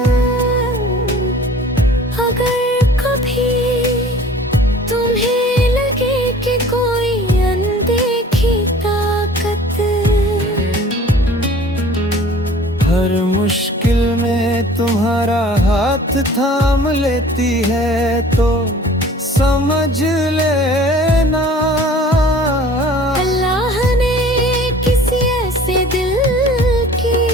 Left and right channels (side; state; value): both; normal; correlation 0.47